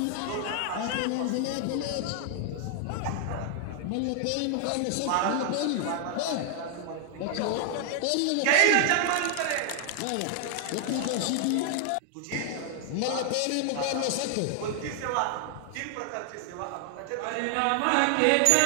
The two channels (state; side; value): different; both; correlation 0.00